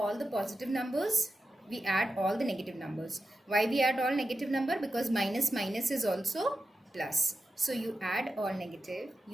the positive numbers. We add all the negative numbers. Why we add all negative number? Because minus minus is also plus. So you add all negative,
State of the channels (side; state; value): both; normal; correlation 0.90